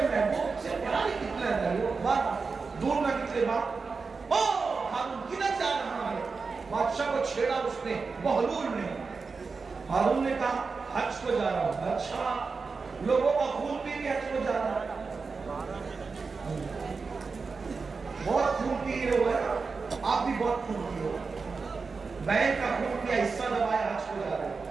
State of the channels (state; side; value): quieter; left; 4.6 dB